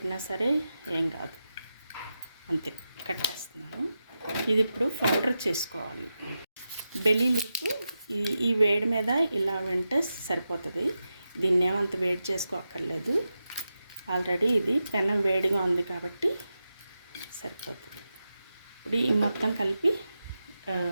సరే ఏం కాదు. అంతే, కట్టేస్తున్నాను. ఇది ఇప్పుడు పౌడర్ చేసుకోవాలి. బెల్లి లీఫ్ ఈ వేడి మీద ఇలా వింటే సరిపోతుంది. దీన్ని ఏమంత వేడి చేసుకోక్కర్లేదు. ఆల్రెడీ ఇది పెనం వేడిగా ఉంది కాబట్టి సరిపోతుంది. ఇప్పుడు ఈ మొత్తం కలిపి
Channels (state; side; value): inverted; both; correlation -0.90